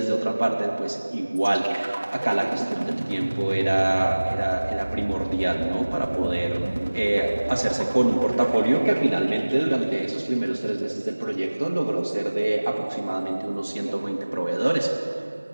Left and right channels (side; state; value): both; inverted; correlation -1.00